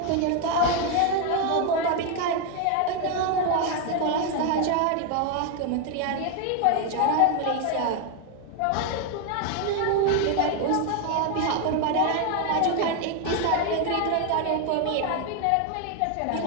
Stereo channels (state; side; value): different; both; correlation 0.01